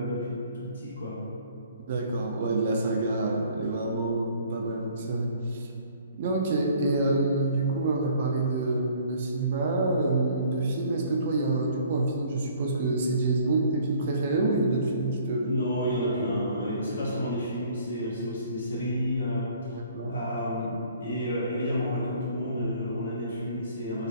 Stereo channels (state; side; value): inverted; both; correlation -0.56